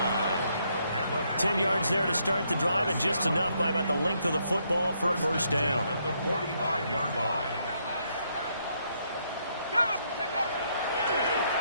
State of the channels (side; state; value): both; inverted; correlation -0.74